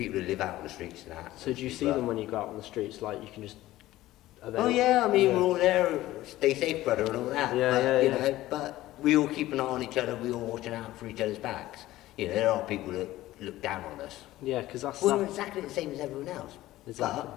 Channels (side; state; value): right; quieter; 15.9 dB